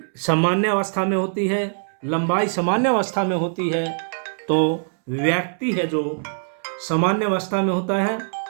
सामान्य अवस्था में होती है, लंबाई सामान्य अवस्था में होती है, तो व्यक्ति है जो सामान्य अवस्था में होता है,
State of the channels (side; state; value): left; silent; 64 dB below the other